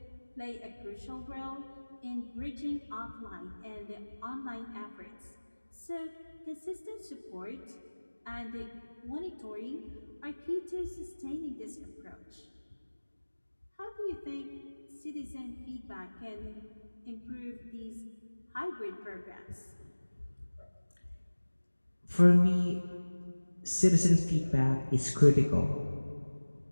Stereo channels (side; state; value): both; inverted; correlation -1.00